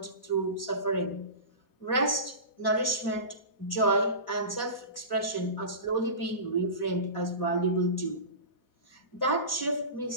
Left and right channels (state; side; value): late; right; 3.7 ms